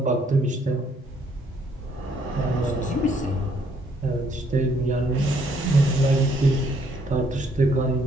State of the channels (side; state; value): both; normal; correlation 0.67